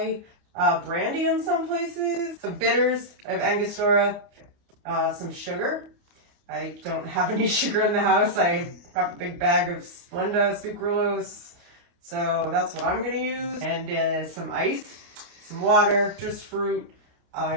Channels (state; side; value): late; left; 29 ms